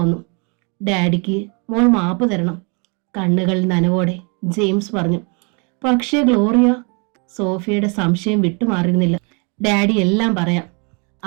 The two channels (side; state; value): left; quieter; 33.8 dB